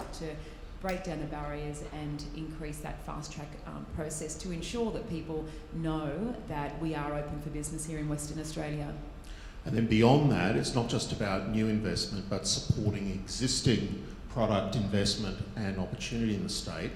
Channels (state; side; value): identical; both; correlation 1.00